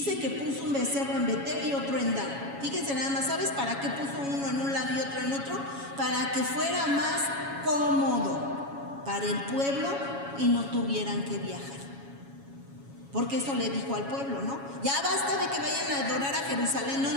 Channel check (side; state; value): left; late; 7.2 ms